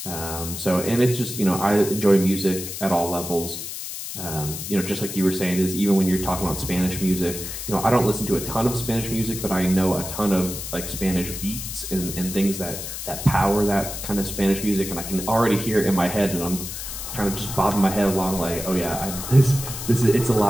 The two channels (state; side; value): noise; left; hiss, 7 dB below the sound